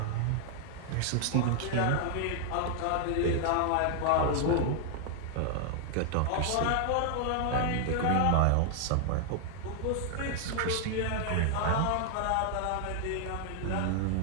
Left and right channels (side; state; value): both; different; correlation 0.00